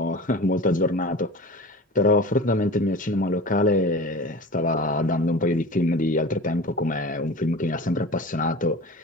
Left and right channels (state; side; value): normal; both; correlation 0.35